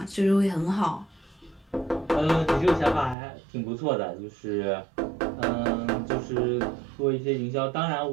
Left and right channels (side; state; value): left; drops out; at 3.2 s